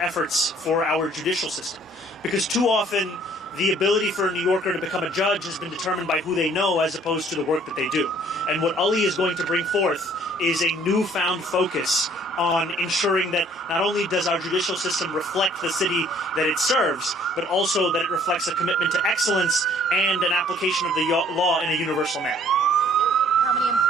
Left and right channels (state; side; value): normal; both; correlation 0.58